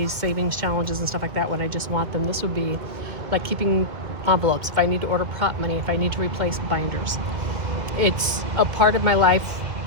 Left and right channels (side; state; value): left; late; 2.0 ms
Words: savings challenges and stuff like that when I just want them. This would be like keeping envelopes, if I need to order prop money, if I need to replace binders. It's a part of my life,